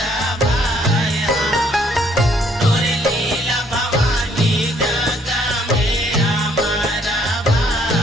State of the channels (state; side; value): normal; both; correlation 0.66